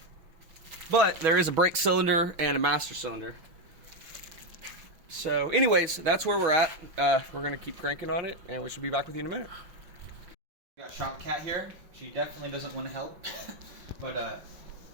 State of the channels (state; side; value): late; left; 6.2 ms